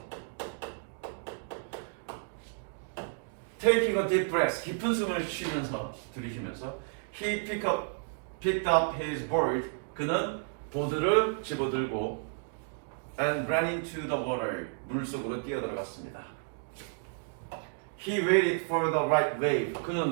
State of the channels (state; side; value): silent; left; digital silence